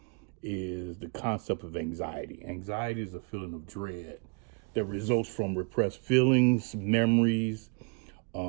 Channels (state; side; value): quieter; left; 35.8 dB